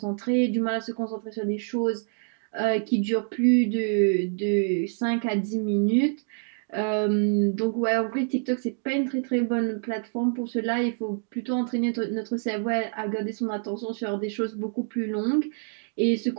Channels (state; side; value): silent; left; digital silence